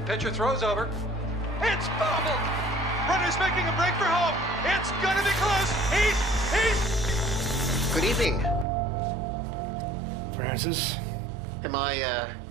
pitcher throws over. It's bobbled! Runner's making a break for home. It's gonna be close. He's... Good evening. Francis? Am I,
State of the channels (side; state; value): left; drops out; at 8.7 s